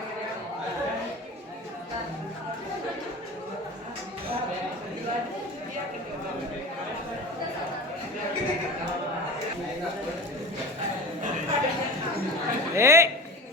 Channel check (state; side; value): normal; both; correlation 0.32